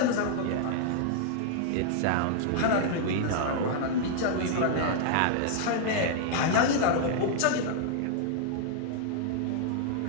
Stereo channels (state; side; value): different; both; correlation -0.01